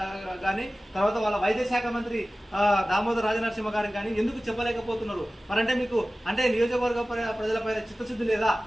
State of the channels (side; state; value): both; normal; correlation 0.97